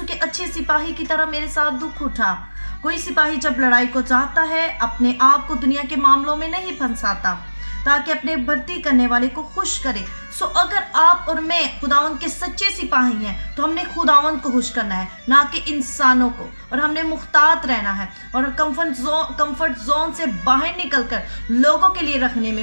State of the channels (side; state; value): both; inverted; correlation -1.00